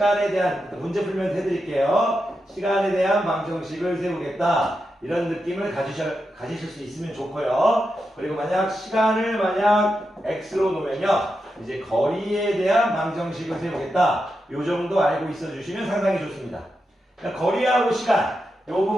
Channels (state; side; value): normal; both; correlation 0.87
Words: 대한 문제 풀면 해드릴게요. 시간에 대한 방정식을 세우겠다. 이런 느낌을 가지실 수 있으면 좋고요. 그리고 시간을 x로 놓으면요, 이제 거리에 대한 방정식을 세우겠다. 요 정도 알고 있어 주시면 상당히 좋습니다. 그러니까 거리하고 시간, 요